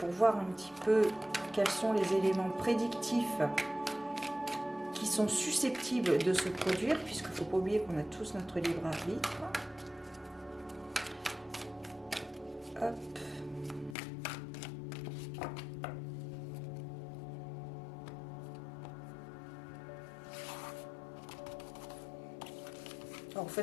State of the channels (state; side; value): drops out; right; at 14.0 s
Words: voir un petit peu quels sont les éléments prédictifs qui sont susceptibles de se produire, puisqu'il ne faut pas oublier qu'on a tous notre libre arbitre. Hop. En